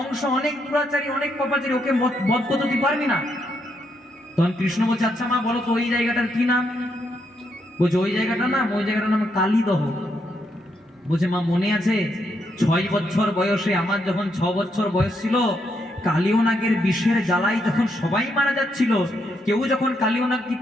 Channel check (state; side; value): normal; both; correlation 0.78